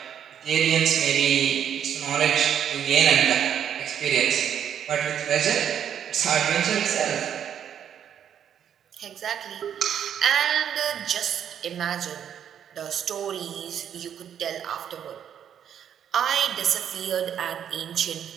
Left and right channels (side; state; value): left; quieter; 9.0 dB